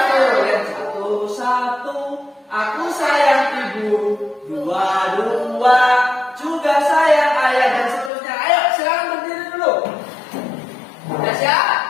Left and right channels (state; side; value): drops out; right; at 8.1 s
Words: Yang satu-satu, aku sayang ibu. Dua-dua, juga sayang ayah, dan seterusnya. Ayo, silakan berdiri dulu. Sudah siap?